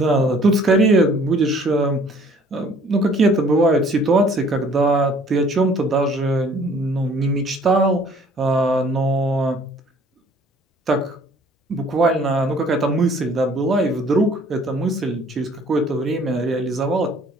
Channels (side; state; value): both; normal; correlation 0.56